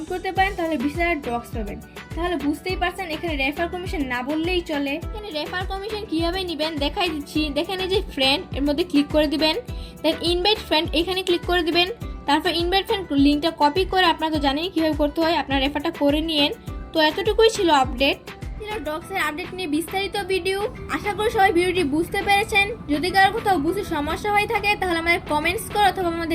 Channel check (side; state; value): both; identical; correlation 1.00